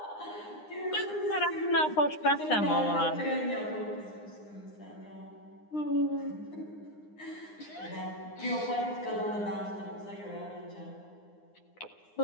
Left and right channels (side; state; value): right; late; 9.8 ms